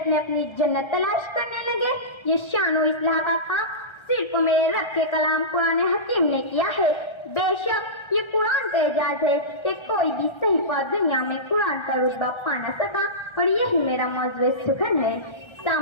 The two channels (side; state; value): right; late; 1.3 ms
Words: میں اپنی جنت تلاش کرنے لگے؟ یہ شان و اصلاح کا کام صرف میرے رب کے کلام قرآن حکیم نے کیا ہے۔ بے شک یہ قرآن کا اعجاز ہے کہ کوئی بھی صحیفہ دنیا میں قرآن کا رتبہ پا نہ سکا، اور یہی میرا موضوع سخن ہے۔